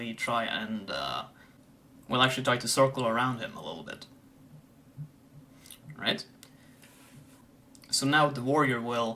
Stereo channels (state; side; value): identical; both; correlation 1.00